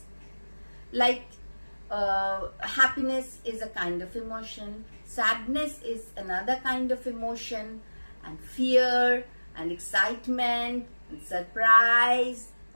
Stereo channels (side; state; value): both; inverted; correlation -1.00